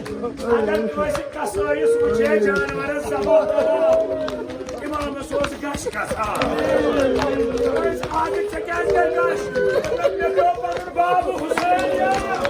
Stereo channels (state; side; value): identical; both; correlation 1.00